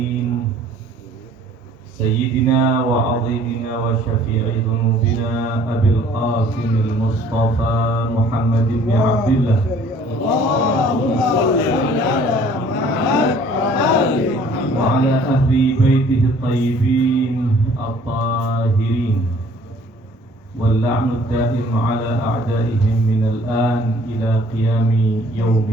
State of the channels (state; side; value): normal; both; correlation 0.55